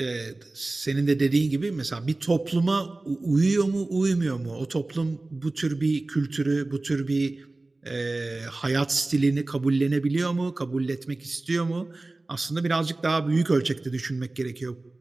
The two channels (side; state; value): left; quieter; 3.0 dB